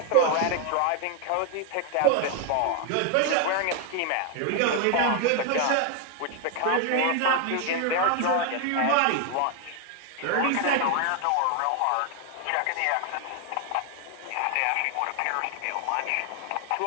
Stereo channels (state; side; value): different; both; correlation 0.01